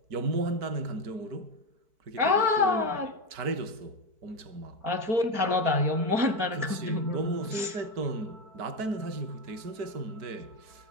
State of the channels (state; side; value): late; left; 4.6 ms